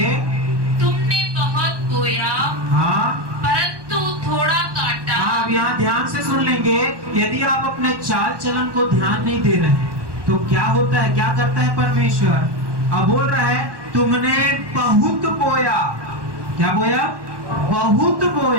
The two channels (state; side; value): late; left; 1.2 ms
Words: तुमने बहुत बोया हाँ, परंतु थोड़ा काटा। हाँ, अब यहाँ ध्यान से सुन लेंगे। यदि आप अपने चाल चलन को ध्यान नहीं दे रहे हैं तो क्या होता है? क्या करता है परमेश्वर? अब बोल रहा है, तुमने बहुत बोया। क्या बोया? बहुत